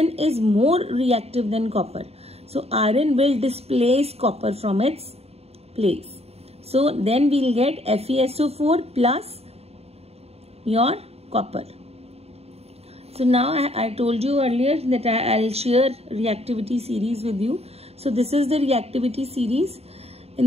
is more reactive than copper. So iron will displace copper from its place. So then we will get FeSO4 plus your copper. So now I told you earlier that I'll share reactivity series with you. So this is the reactivity series.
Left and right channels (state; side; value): late; left; 0.30 ms